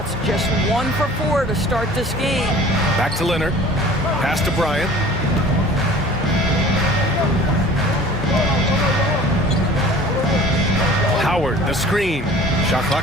Just 1 for 4 to start this game. Back to Leonard. Pass to Bryant. Howard, the screen. Shot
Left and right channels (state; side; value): normal; both; correlation 0.46